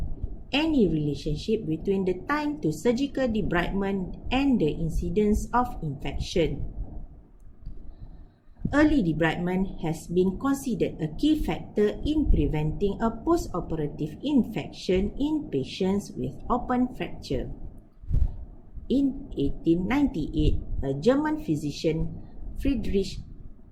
Any relationship between the time to surgical debridement and the incidence of infection. Early debridement has been considered a key factor in preventing a post-operative infection in patients with open fracture. In 1898, a German physician, Friedrich,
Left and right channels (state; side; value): identical; both; correlation 1.00